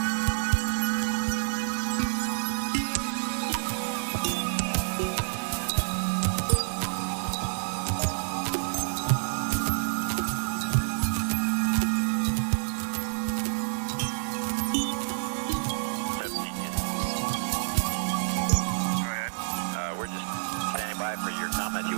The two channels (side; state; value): left; silent; digital silence